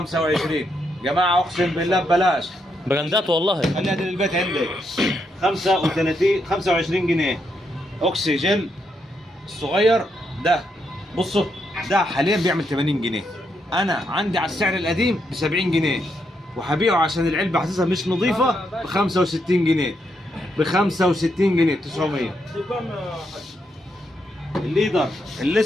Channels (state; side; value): normal; both; correlation 0.79